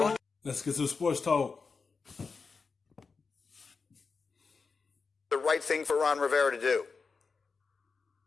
Let's get to sports talk. The right thing for Ron Rivera to do.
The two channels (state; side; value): quieter; right; 4.8 dB